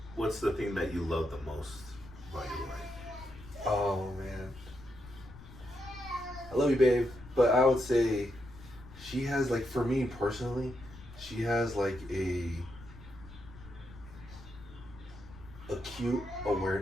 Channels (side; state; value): left; noise; rumble, 17 dB below the sound